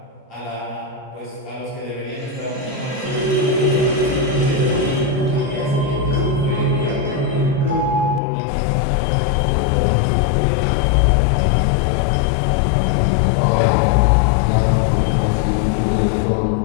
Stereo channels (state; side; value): drops out; right; at 8.2 s